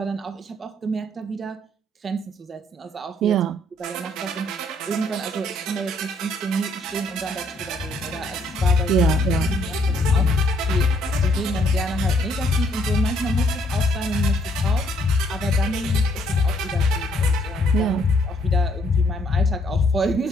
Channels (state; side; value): normal; both; correlation 0.68